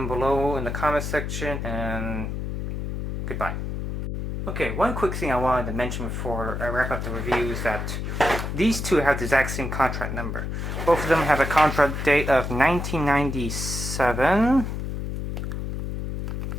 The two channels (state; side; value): noise; left; hum, 4 dB below the sound